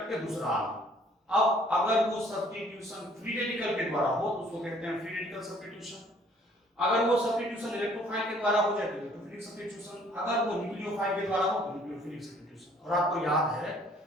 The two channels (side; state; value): both; normal; correlation 0.59